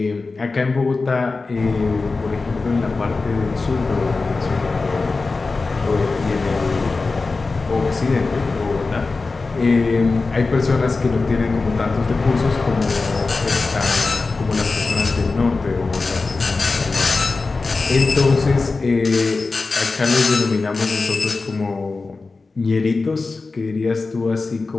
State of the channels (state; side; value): quieter; right; 3.9 dB